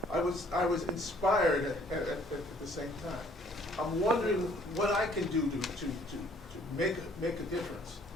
I was inspired at the same time. I'm wondering what I can do to make a difference.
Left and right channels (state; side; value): normal; both; correlation 0.59